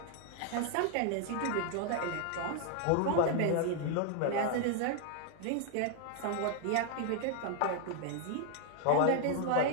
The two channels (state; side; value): different; both; correlation 0.00